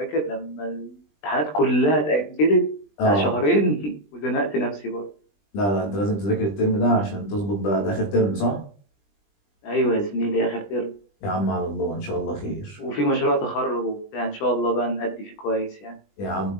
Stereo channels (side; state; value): right; late; 20 ms